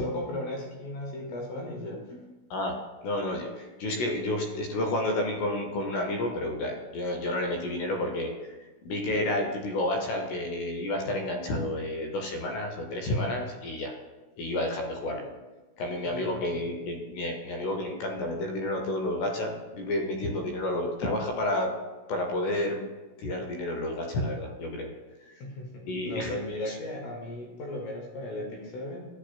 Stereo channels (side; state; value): right; late; 16 ms